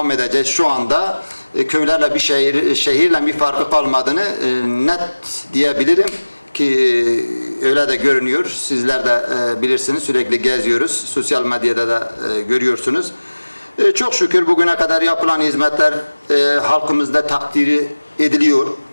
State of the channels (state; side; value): inverted; both; correlation -1.00